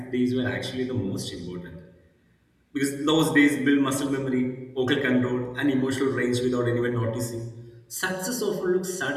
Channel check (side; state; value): both; identical; correlation 1.00